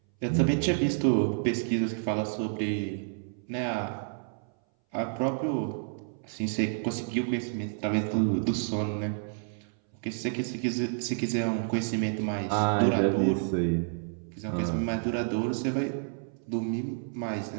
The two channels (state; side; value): silent; left; 58 dB below the other